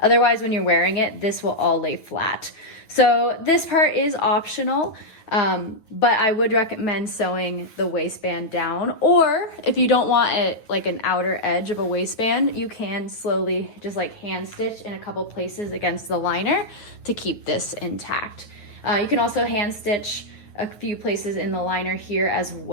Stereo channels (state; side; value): late; right; 9.2 ms